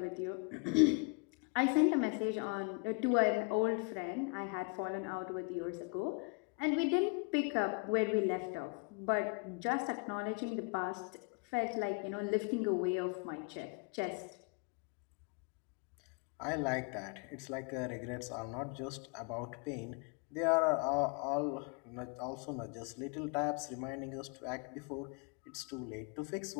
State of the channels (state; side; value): quieter; right; 34.4 dB